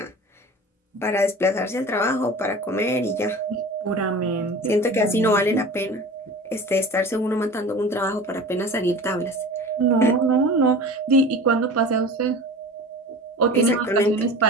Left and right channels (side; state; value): both; normal; correlation 0.37